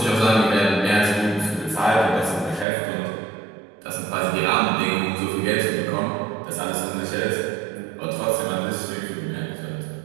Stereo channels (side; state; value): left; drops out; at 2.7 s